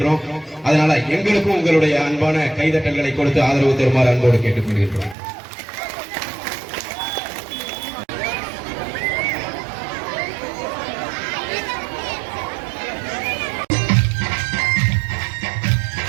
அதனால எங்களுக்கும் உங்களுடைய அன்பான கைதட்டல்களை கொடுத்து ஆதரவு தருமாறு அன்போடு கேட்டுக்கொள்கின்றோம்.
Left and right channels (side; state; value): left; drops out; at 5.2 s